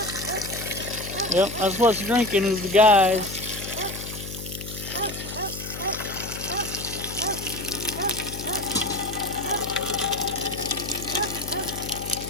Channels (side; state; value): left; noise; hum, 9 dB below the sound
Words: Yep, that's what's drinking is the guys.